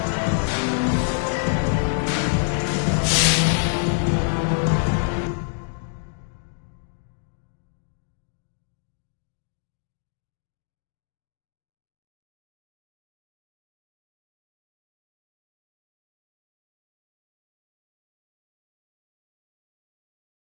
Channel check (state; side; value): silent; right; digital silence